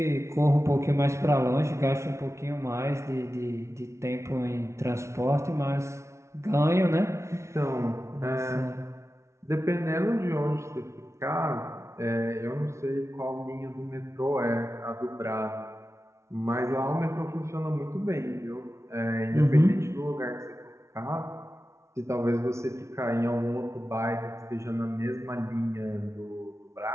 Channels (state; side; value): late; left; 0.13 ms